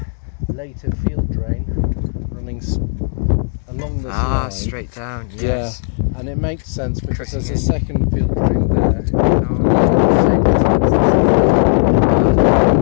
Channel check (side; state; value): right; silent; 69 dB below the other